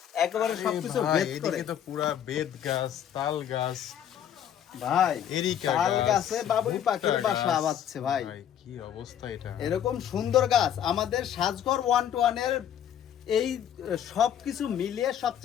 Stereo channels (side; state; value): right; quieter; 9.8 dB